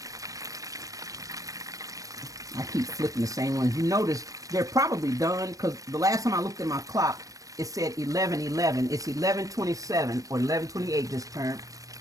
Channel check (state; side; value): late; left; 0.16 ms